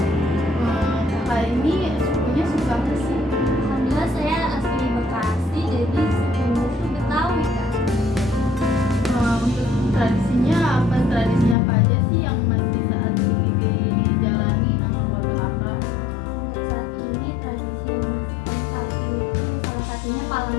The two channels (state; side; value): drops out; right; at 11.6 s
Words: Kakak ini sukunya suku apa sih? Alhamdulillah saya asli Bekasi, jadi sukunya itu Betawi Kak. Untuk tradisi apa aja sih yang masih saat ini dijalani sama keluarga kakak? Untuk saat ini tradisi yang masih kental itu salah satunya palang